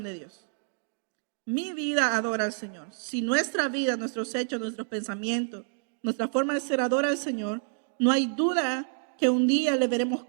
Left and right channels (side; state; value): left; silent; digital silence